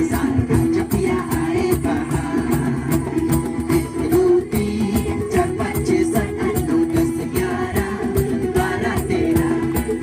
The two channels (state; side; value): identical; both; correlation 1.00